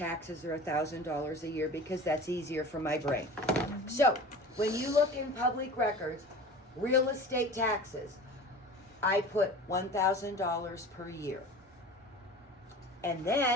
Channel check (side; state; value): both; normal; correlation 0.37